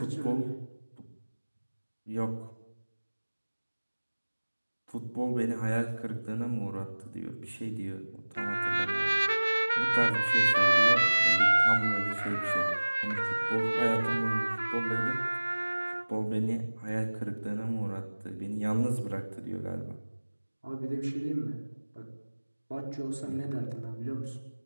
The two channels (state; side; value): inverted; both; correlation -1.00